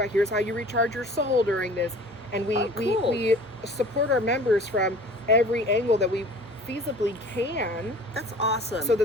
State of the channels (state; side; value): normal; both; correlation 0.46